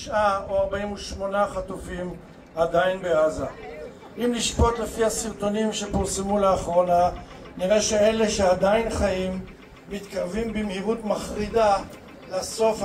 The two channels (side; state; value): both; identical; correlation 1.00